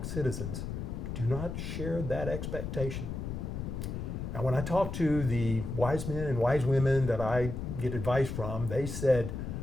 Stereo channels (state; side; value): noise; left; rumble, 5 dB below the sound